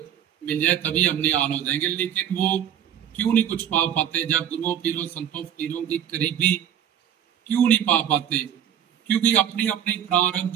मिल जाए तभी हम निहाल हो जाएंगे। लेकिन वो क्यों नहीं कुछ पा पाते, जब गुरुओं पीरों संतों फकीरों की करीबी क्यों नहीं पा पाते? क्योंकि अपनी अपनी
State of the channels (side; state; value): left; quieter; 9.7 dB